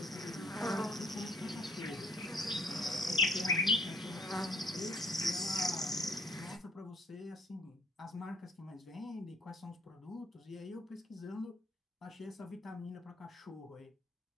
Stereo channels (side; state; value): both; normal; correlation 0.60